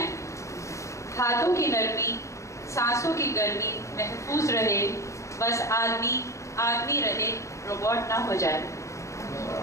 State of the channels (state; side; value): late; right; 0.15 ms